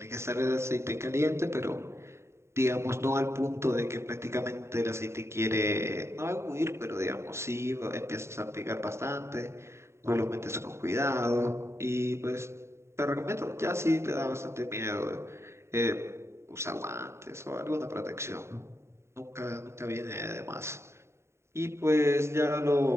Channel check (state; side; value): late; left; 0.13 ms